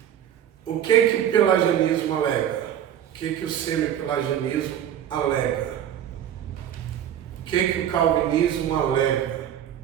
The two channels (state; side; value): quieter; left; 10.2 dB